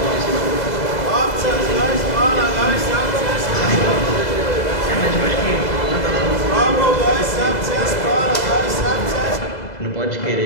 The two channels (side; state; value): right; late; 2.0 ms